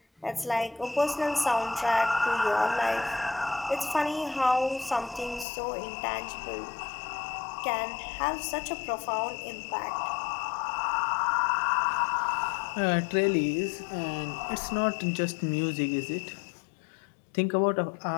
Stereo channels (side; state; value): right; drops out; at 5.5 s